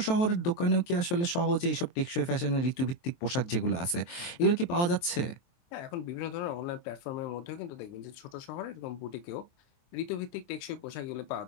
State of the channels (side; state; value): right; late; 23 ms